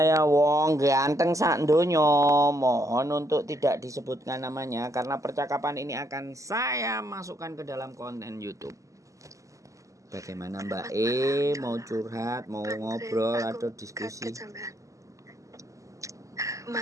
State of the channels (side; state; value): left; late; 0.16 ms